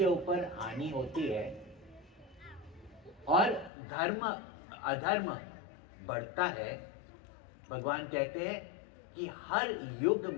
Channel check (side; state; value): right; drops out; at 3.7 s